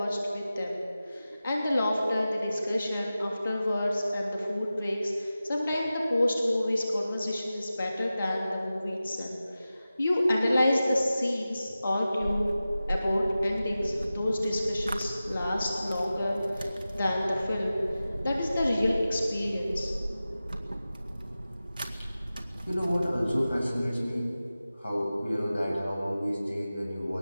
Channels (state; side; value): inverted; both; correlation -0.95